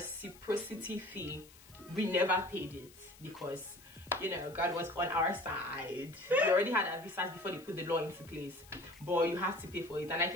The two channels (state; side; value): noise; left; hiss, 23 dB below the sound